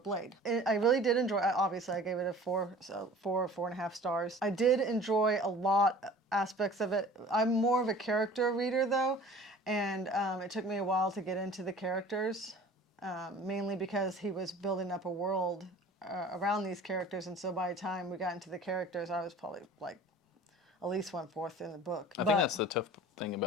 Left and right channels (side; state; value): both; normal; correlation 0.44